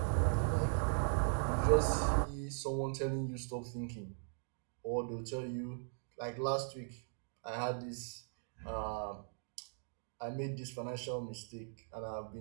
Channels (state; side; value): silent; left; digital silence